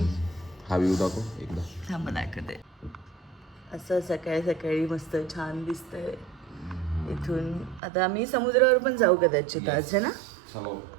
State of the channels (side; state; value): left; drops out; at 7.8 s